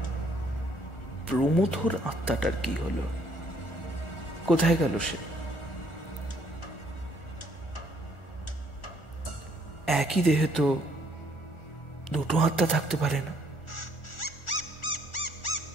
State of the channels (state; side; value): late; right; 1.4 ms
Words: প্রমথর আত্মাটার কি হলো? কোথায় গেল সে? একই দেহে তো দুটো আত্মা থাকতে পারে না।